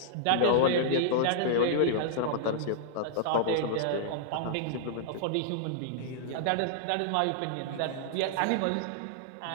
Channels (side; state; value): both; different; correlation -0.01